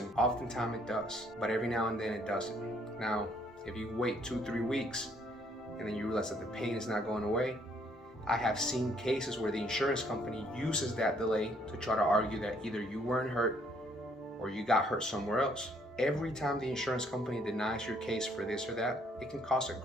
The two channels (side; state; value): both; normal; correlation 0.66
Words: oftentimes it does. But every now and then it doesn't. Now, if you wait 2-3 weeks and then you realize that the pain is not going away, I have seen cases where the insurance company uses that delay to try to argue that either you weren't hurt or you got hurt somewhere else. Every time the insurance company denies your case for this or that, it can cause a